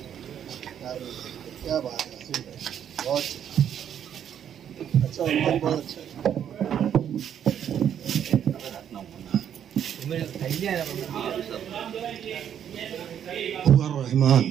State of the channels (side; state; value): left; quieter; 9.3 dB